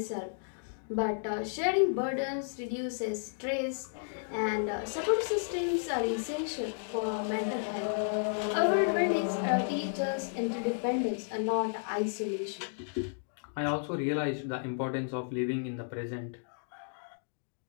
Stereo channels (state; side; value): silent; right; digital silence